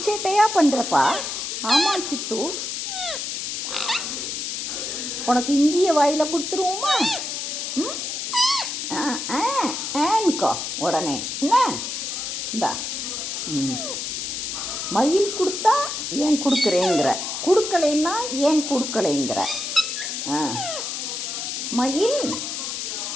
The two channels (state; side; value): noise; left; hiss, 4 dB below the sound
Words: சேட்டையா பண்ணுறப்பா. ஆமாம் சித்து, உனக்கு இஞ்சியை வாயில் கொடுத்துருவோமா? ஏன்க்கோ உடனே என்ன? இந்தா. மயில் கொடுத்தா ஏன் கொடுக்குறேங்கிற, கொடுக்கலைன்னா ஏன் கொடுக்கலைங்கிற? மயில்